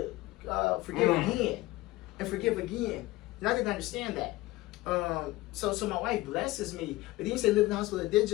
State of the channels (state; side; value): quieter; right; 18.8 dB